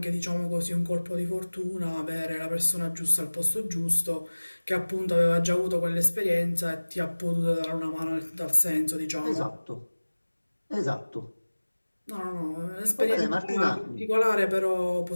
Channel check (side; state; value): both; inverted; correlation -1.00